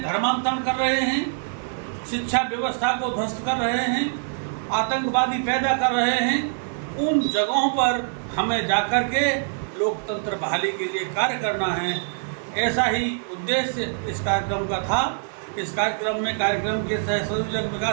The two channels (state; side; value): silent; left; digital silence